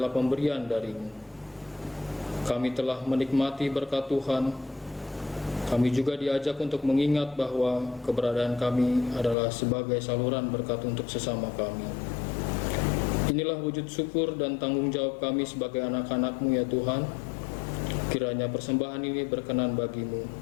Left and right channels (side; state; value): right; drops out; at 9.3 s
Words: pemberian dari-Mu. Kami telah menikmati berkat Tuhan. Kami juga diajak untuk mengingat bahwa keberadaan kami adalah sebagai saluran berkat untuk sesama kami. Inilah wujud syukur dan tanggung jawab kami sebagai anak-anak-Mu ya Tuhan. Kiranya persembahan ini berkenan bagi-Mu.